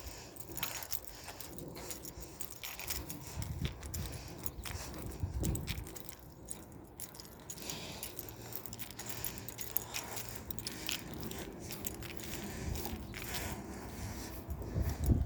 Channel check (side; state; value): both; identical; correlation 1.00